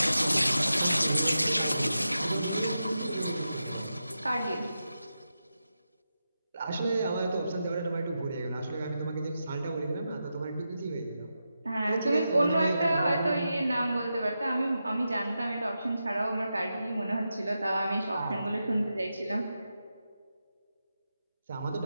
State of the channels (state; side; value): inverted; both; correlation -0.89